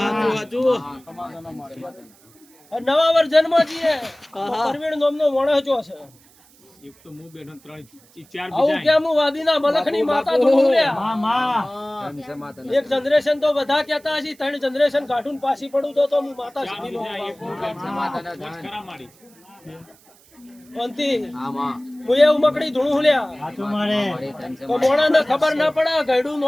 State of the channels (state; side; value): noise; right; hiss, 28 dB below the sound